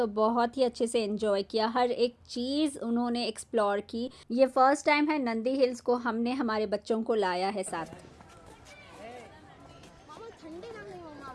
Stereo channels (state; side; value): identical; both; correlation 1.00